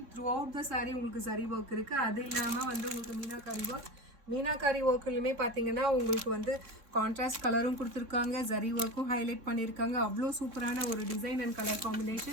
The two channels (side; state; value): left; late; 3.6 ms